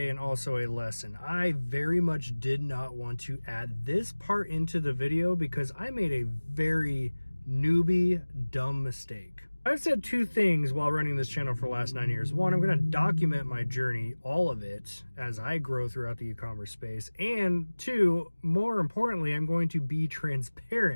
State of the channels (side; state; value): both; inverted; correlation -1.00